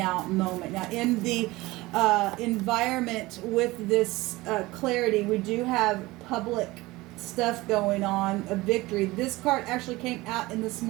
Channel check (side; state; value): left; quieter; 20.2 dB